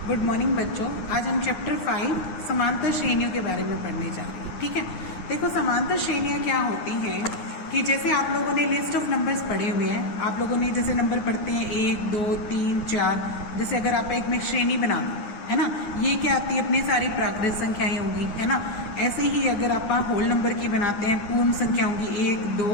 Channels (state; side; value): late; right; 9.8 ms